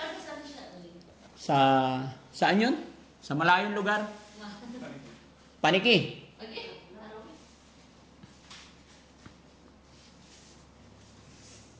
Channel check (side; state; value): both; identical; correlation 1.00